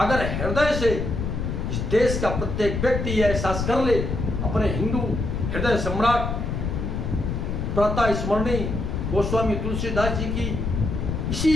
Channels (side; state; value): left; noise; rumble, 2 dB below the sound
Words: हृदय से इस देश का प्रत्येक व्यक्ति यह एहसास कर ले, अपने हिंदू हृदय सम्राट प्रातः स्मरणीय गोस्वामी तुलसीदास जी की